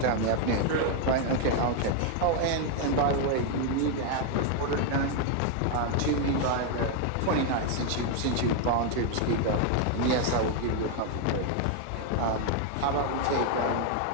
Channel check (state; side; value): different; both; correlation 0.01